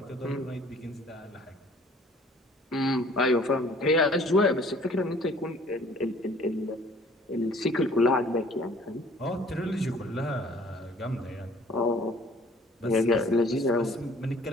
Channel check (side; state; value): both; normal; correlation 0.54